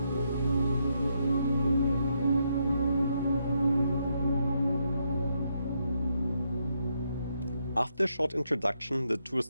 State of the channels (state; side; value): inverted; both; correlation -0.78